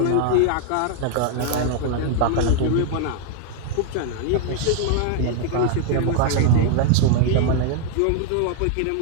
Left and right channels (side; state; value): both; different; correlation 0.00